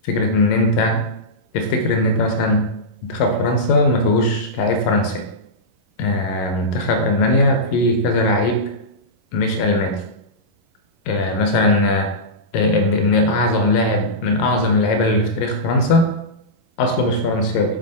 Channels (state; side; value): late; right; 11 ms